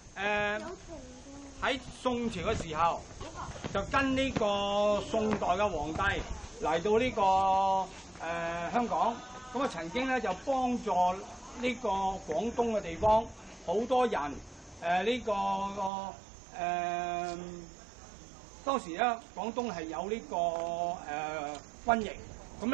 喺宋朝嘅時候，就跟呢個宋代嘅皇帝嚟到呢個香港，咁啊曾經咧就幫助呢個廣東嘅地方好多人當時咧廣東係有呢個瘟疫，咁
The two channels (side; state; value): left; drops out; at 15.9 s